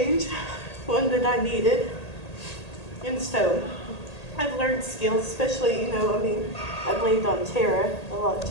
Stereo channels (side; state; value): right; late; 1.8 ms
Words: one that I needed. And so I've learned skills, especially, you know, I mean, I've leaned on Tara a lot